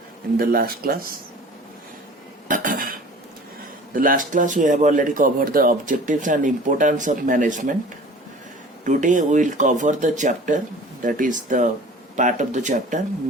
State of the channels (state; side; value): normal; both; correlation 0.44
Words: in the last class. The last class we have already covered the objectives and importance of management. Today we will cover the chapter, that is the part of the chapter,